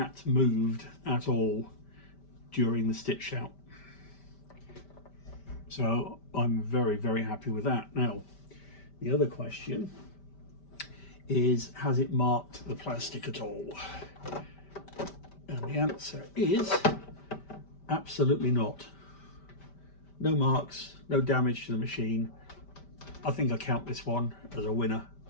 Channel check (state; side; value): late; right; 5.1 ms